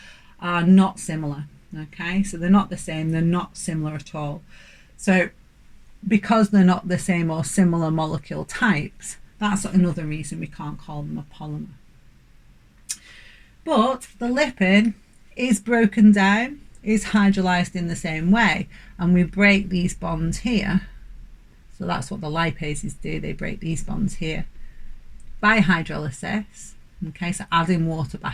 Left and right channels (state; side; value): identical; both; correlation 1.00